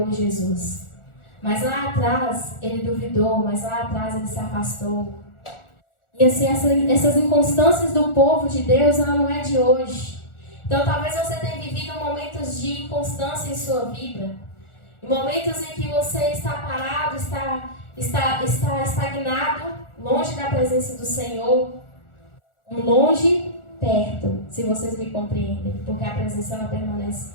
Jesus. Mas lá atrás ele duvidou, mas lá atrás ele se afastou. E assim, essas inconstâncias do povo de Deus, ela não é de hoje. Então talvez você tenha vivido momentos de inconstância em sua vida. Momentos em que você está parado, está estagnado, longe da presença do Senhor. Longe, perto, se vocês me compreendem. Porque a presença ela permanece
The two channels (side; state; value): right; late; 1.4 ms